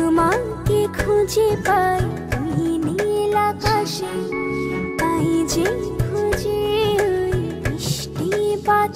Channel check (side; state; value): both; identical; correlation 1.00